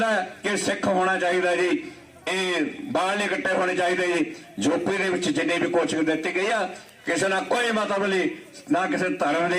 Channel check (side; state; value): both; identical; correlation 1.00